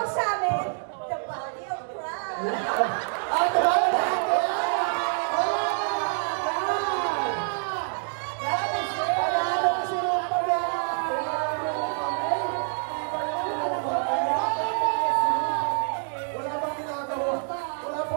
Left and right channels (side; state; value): left; silent; 60 dB below the other